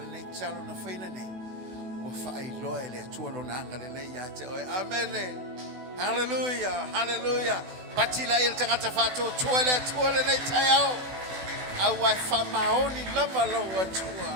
nei talo na whaina nei. Wa fai loa ele atua lo nanga le le ia te oi. Amen. Hallelujah. Hallelujah. Patila il tangata fato tua le nei taiao. Awai fa maoni lava lo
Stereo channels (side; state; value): left; late; 16 ms